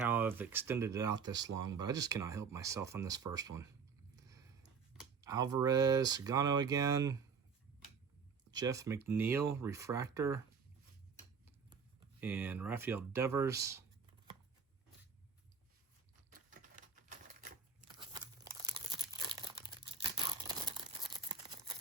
I've extended it out this long, but I just cannot help myself on this first one. Alvarez, Sagano again. Jeff McNeil, Refractor. And Rafael Devers.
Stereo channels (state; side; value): quieter; left; 5.7 dB